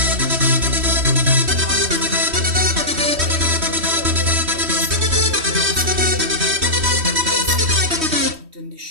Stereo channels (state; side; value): late; left; 3.1 ms